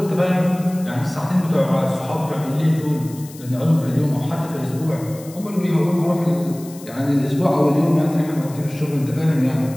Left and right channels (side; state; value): left; noise; hiss, 19 dB below the sound